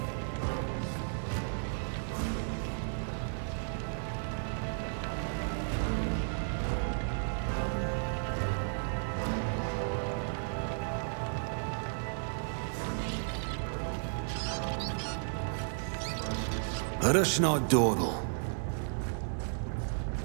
Let us not dawdle.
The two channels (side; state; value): left; silent; 55 dB below the other